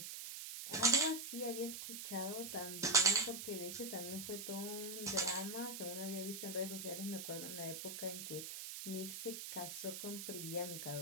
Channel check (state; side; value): noise; right; hiss, 6 dB below the sound